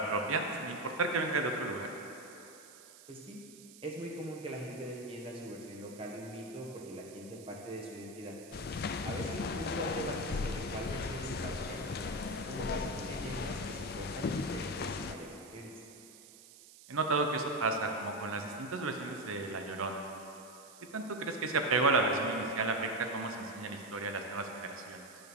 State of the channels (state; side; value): noise; right; hiss, 19 dB below the sound